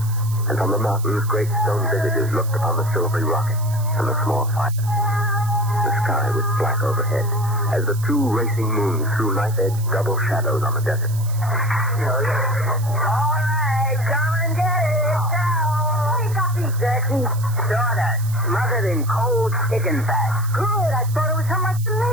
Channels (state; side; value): noise; right; hiss, 16 dB below the sound